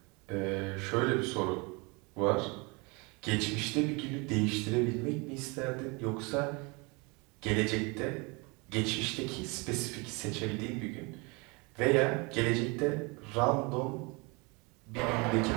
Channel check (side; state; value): left; quieter; 28.8 dB